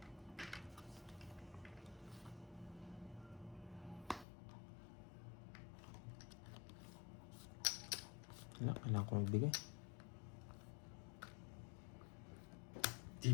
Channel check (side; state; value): right; drops out; at 4.2 s